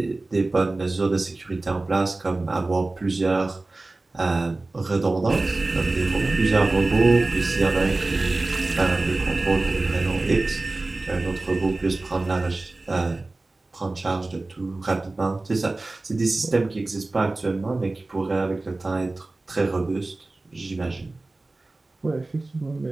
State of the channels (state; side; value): quieter; left; 3.1 dB